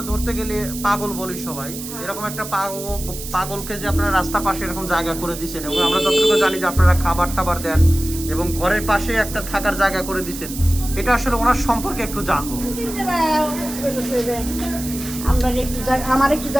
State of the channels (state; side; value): noise; right; hiss, 10 dB below the sound